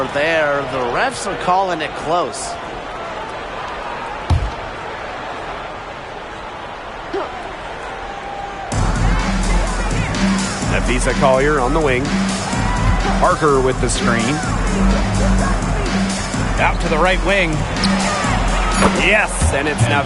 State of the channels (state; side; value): identical; both; correlation 1.00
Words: there. The refs are calling it close. Napheesa Collier on the wing. Parker with the screen. Out to the right wing. Yes, and it's